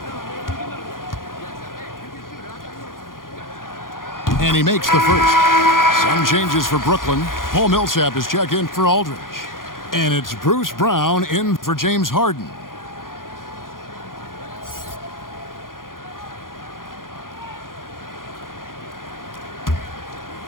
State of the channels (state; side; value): late; right; 0.90 ms